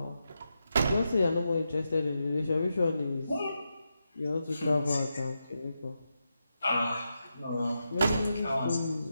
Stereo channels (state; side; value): inverted; both; correlation -0.87